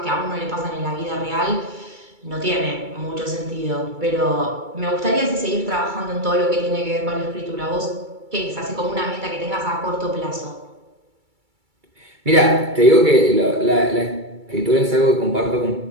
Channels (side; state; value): left; late; 2.3 ms